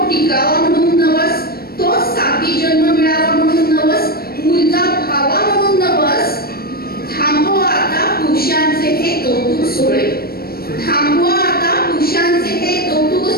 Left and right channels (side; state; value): right; late; 0.44 ms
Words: टिकावा म्हणून नवस, तो साती जन्म मिळावा म्हणून नवस, मुलगा भावा म्हणून नवस. थांबवा आता पुरुषांचे हे कौतुक सोहळे, थांबवा आता पुरुषांचे हे कौतुक